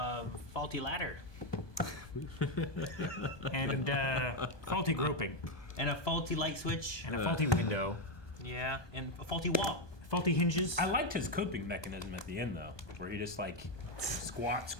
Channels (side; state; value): right; late; 1.2 ms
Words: faulty ladder. And faulty groping. And a faulty light switch. And a faulty window. Yeah, and a faulty wall. Faulty hinges. I liked his coping mechanism at the end, though, where he just, like, squats,